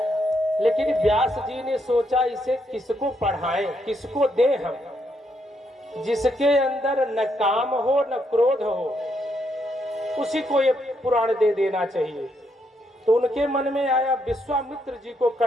लेकिन व्यास जी ने सोचा इसे किसको पढ़ाएं, किसको दें हम, जिसके अंदर न काम हो न क्रोध हो, उसी को ये पुराण दे देना चाहिए। तो उनके मन में आया विश्वामित्र जी को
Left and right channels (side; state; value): both; normal; correlation 0.77